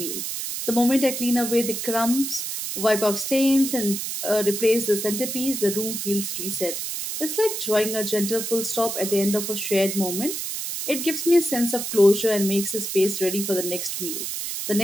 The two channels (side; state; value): right; noise; hiss, 4 dB below the sound